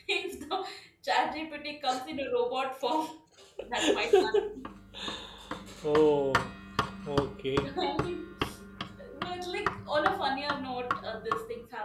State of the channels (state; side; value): identical; both; correlation 1.00